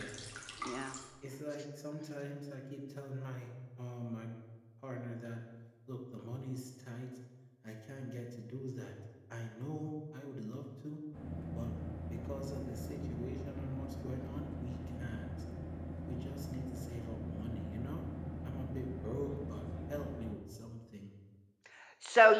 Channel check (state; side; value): identical; both; correlation 1.00